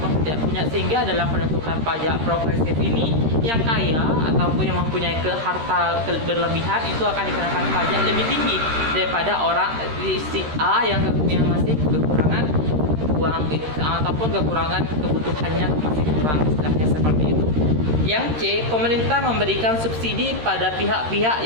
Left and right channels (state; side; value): late; left; 13 ms